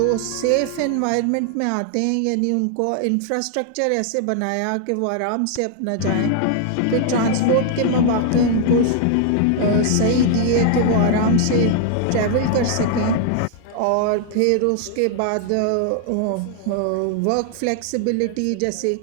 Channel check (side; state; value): both; different; correlation 0.00